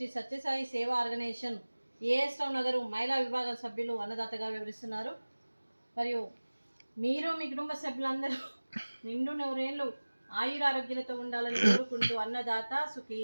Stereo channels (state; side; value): inverted; both; correlation -1.00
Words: సత్యసాయి సేవా ఆర్గనైజేషన్ ఏఎస్ రావు నగర్ మహిళా విభాగం సభ్యులు అన్నదాతగా వివరిస్తున్నారు. మరియు మీరు మీ కుటుంబ సభ్యులందరూ నిండు నూరేళ్లు ఆయురారోగ్యాలతో ఉండాలని కోరుకుంటూ అన్నదాత సుఖీ